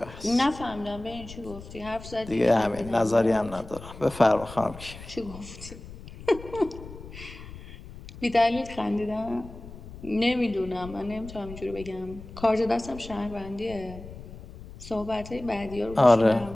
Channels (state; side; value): noise; left; rumble, 15 dB below the sound